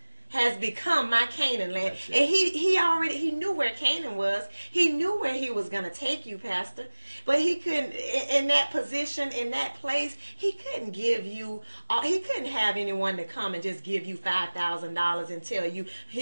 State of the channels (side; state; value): both; inverted; correlation -1.00